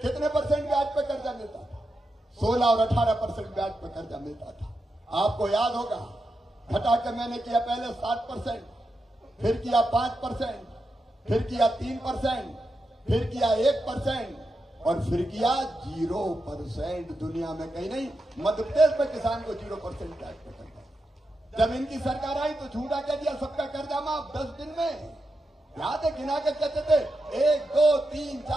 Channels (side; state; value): both; normal; correlation 0.87